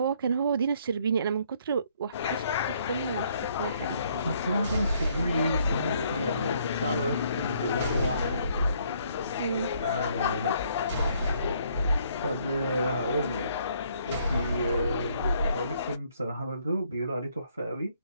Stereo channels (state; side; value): inverted; both; correlation -0.66